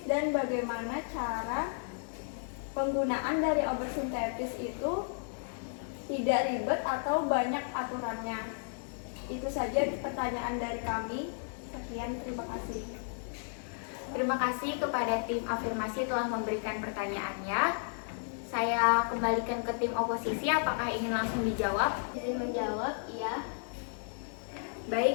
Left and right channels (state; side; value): silent; right; 56 dB below the other